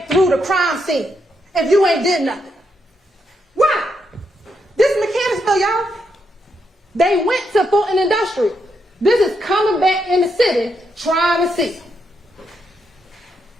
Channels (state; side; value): normal; both; correlation 0.80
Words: through the crime scene if you ain't did nothing? Why? This is Mechanicsville, y'all. They went to Fulton Industrial. This is coming back in the city trying to see.